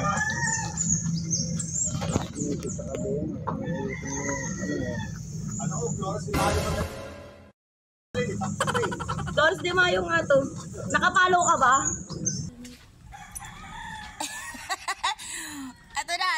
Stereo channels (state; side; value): identical; both; correlation 1.00